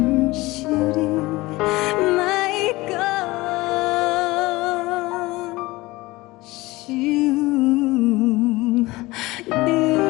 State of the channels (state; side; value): quieter; right; 20.6 dB